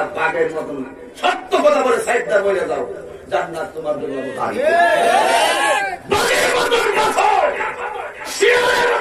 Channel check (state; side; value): identical; both; correlation 1.00